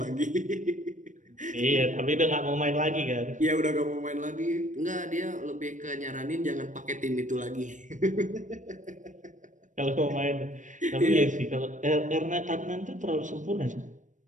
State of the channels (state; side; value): late; left; 0.37 ms